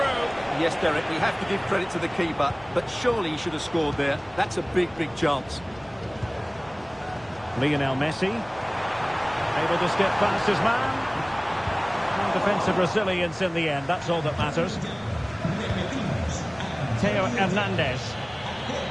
Yes, Derek, we have to give credit to the keeper, but surely he should have scored there. That's a big, big chance. Lionel Messi. Able to skip past his man. And defensive resilience in the end, that's all that matters. Theo Hernandez.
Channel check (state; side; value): noise; left; rumble, 24 dB below the sound